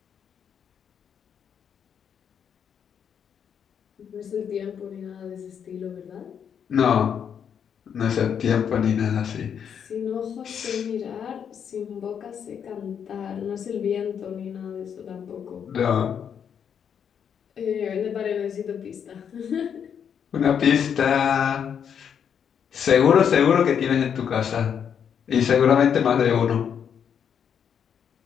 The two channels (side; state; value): right; quieter; 7.9 dB